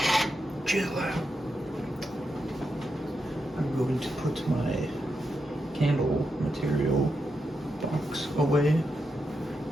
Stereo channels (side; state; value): both; normal; correlation 0.86